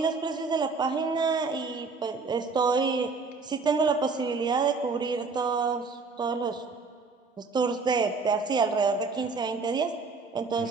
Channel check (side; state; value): left; quieter; 4.4 dB